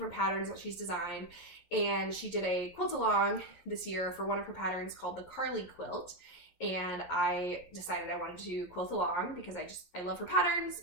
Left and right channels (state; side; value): late; right; 11 ms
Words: patterns that she's designed. And she did a quilt along this year for one of her patterns called the Carly quilt. And I decided I wanted to quilt along because I love her patterns,